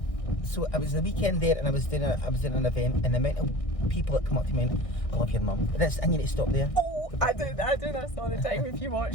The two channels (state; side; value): late; right; 1.6 ms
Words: So I was the weekend there, and I was doing an event, and the amount of people that come up to me and, I love your mum. I need to stop there. I do this all the time. If you